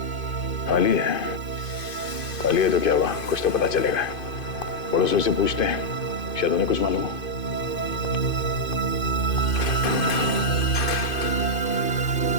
खाली है? खाली है तो क्या हुआ, कुछ तो पता चलेगा। पड़ोसियों से पूछते हैं, शायद उन्हें कुछ मालूम हो।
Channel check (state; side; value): late; right; 2.5 ms